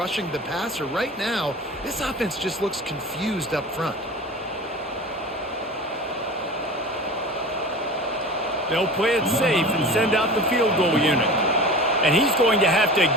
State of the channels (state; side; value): normal; both; correlation 0.35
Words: the passer. Right now, this offense just looks confused up front. They'll play it safe and send out the field goal unit. And he's going to have to